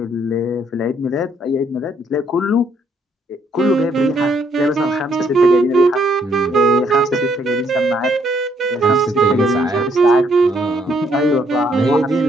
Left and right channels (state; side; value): normal; both; correlation 0.70